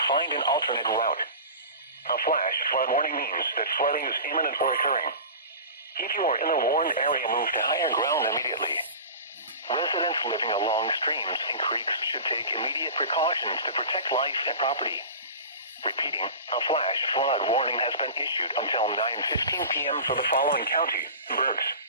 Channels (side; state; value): both; inverted; correlation -0.35